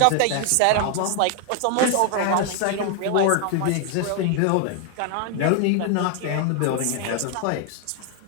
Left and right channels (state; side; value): different; both; correlation 0.00